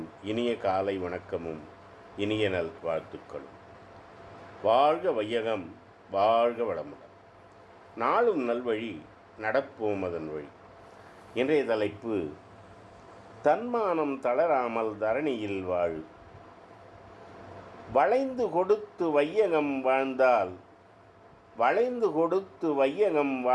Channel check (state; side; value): identical; both; correlation 1.00